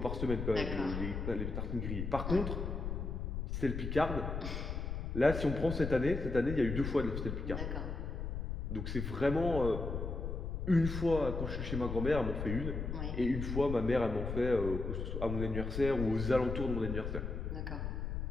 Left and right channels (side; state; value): left; noise; rumble, 4 dB below the sound